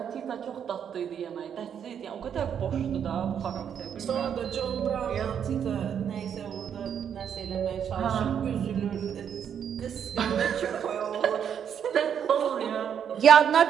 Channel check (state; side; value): quieter; left; 8.3 dB